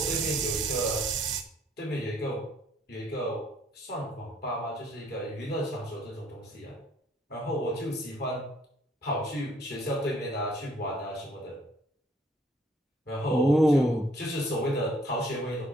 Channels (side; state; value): both; normal; correlation 0.63